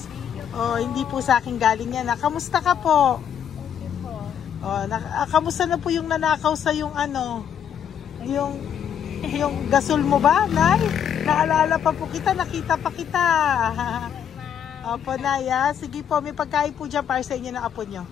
Oh, hindi po sa akin galing yan. Kamusta ka po? Okay po. Oh, kamusta na po yung nanakaw sa yung ano? Yung gasol mo ba, Nay? Naalala pa po kita, nakita pa kita. Opo, Nay, ha? Sige po, may pagkain po dyan para sa inyo ng apo nyo.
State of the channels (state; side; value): quieter; right; 8.7 dB